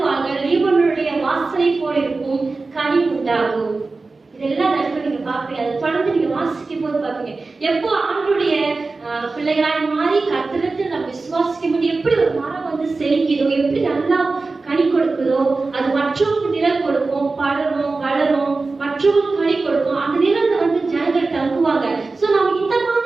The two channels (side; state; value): left; quieter; 3.7 dB